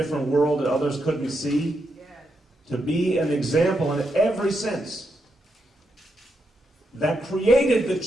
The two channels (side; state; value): both; normal; correlation 0.83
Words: world that others couldn't see, to be an example in every sense that created the